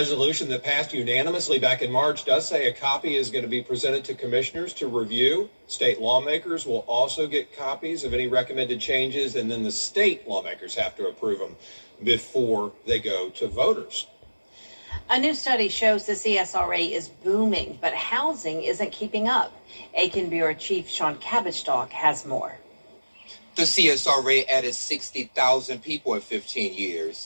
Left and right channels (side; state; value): both; inverted; correlation -1.00